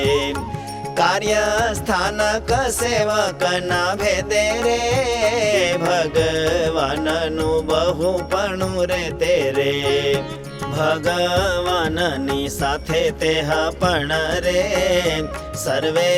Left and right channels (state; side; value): identical; both; correlation 1.00